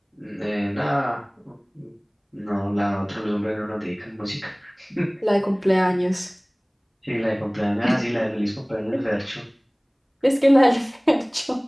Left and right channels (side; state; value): both; identical; correlation 1.00